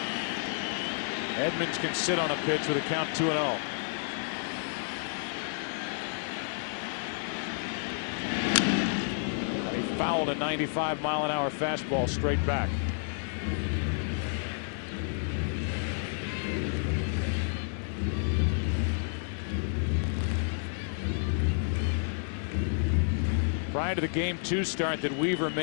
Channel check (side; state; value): right; silent; digital silence